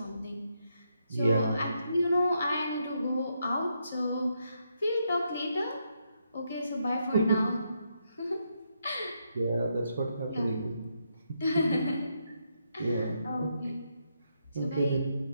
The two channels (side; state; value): both; inverted; correlation -0.79